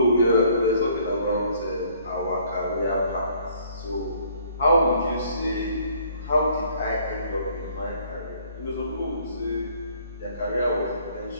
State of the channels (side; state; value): both; inverted; correlation -0.60